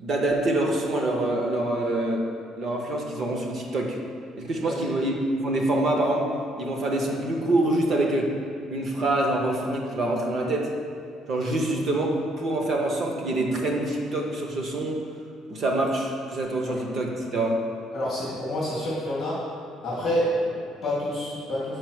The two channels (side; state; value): both; normal; correlation 0.69